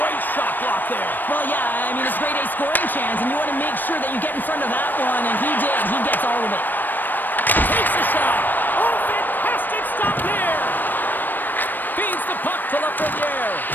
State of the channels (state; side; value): late; right; 0.091 ms